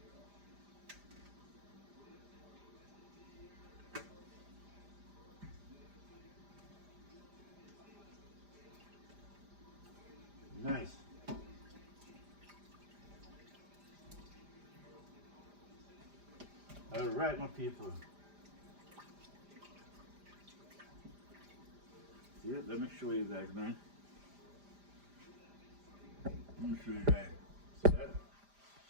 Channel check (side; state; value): left; late; 5.0 ms